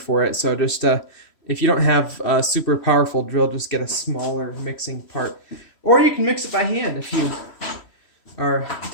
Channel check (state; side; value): late; right; 3.1 ms